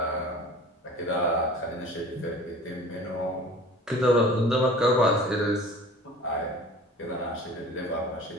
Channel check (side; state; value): both; normal; correlation 0.44